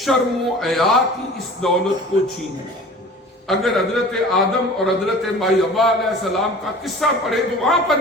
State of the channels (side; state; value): both; normal; correlation 0.42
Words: و حیا کی اس دولت کو چھینے۔ اگر حضرت آدم اور حضرت مائی حوا علیہ السلام کا قصہ پڑھے تو وہاں پر